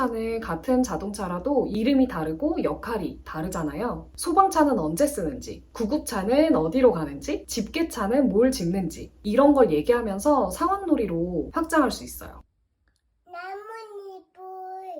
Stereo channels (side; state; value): both; identical; correlation 1.00